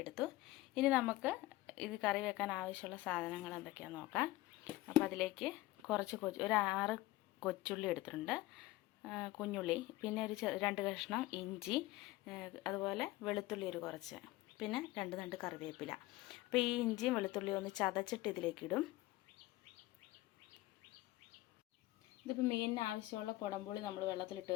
എടുത്തു. ഇനി നമുക്ക് ഇത് കറി വെക്കാൻ ആവശ്യമുള്ള സാധനങ്ങൾ എന്തൊക്കെയാണെന്ന് നോക്കാം. അപ്പോൾ അതിലേക്ക് കുറച്ച് ഒരു 6 കൊച്ചുള്ളി എടുത്തിട്ടുണ്ട്, കുഞ്ഞുള്ളി, പിന്നെ ഒരു 2 കഷ്ണം ഇഞ്ചി, അതുപോലെ വെളുത്തുള്ളി ഒരു കുറച്ച്, പിന്നെ 2 തണ്ട് കറിവേപ്പില. അപ്പോൾ ഈ ഇഞ്ചിയും വെളുത്തുള്ളിയും ഒന്ന് ചതച്ചിട്ട് ഇതിലേക്ക് ഇടും. ഇതിപ്പോൾ മീനിന് ആവശ്യമുള്ള കുടംപുളി നമ്മൾ വെള്ളത്തിലിട്ട്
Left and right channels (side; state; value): right; quieter; 18.2 dB